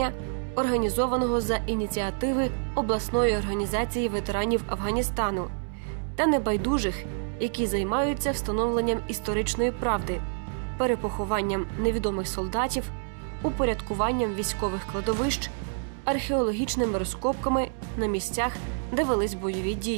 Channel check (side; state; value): left; silent; 60 dB below the other